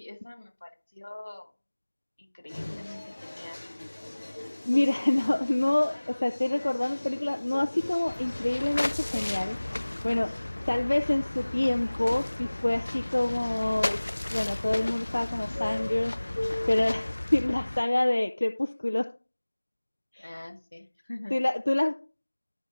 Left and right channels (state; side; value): inverted; both; correlation -1.00